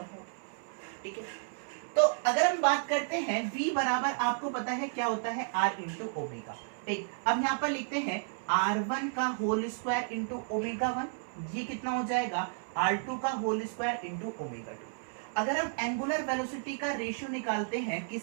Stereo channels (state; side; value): silent; left; 56 dB below the other